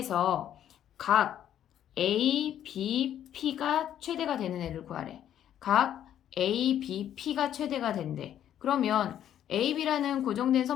각 ABP가 최대가 되는 애를 구하래. 각 A, B, P가 최대가 된대. 그러면 A, B라는 고정된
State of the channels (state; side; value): quieter; right; 10.7 dB